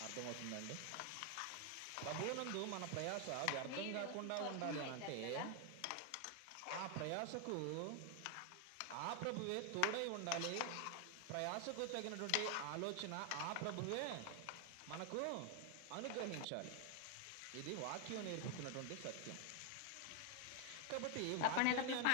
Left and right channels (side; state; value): both; different; correlation 0.00